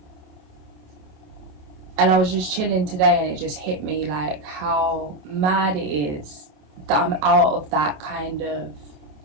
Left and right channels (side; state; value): left; late; 27 ms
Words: And I was just chilling today and it just hit me like how mad it is that I'm out of that kind of